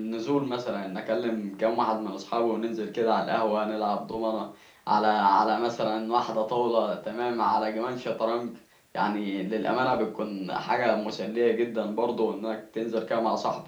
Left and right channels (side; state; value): both; identical; correlation 1.00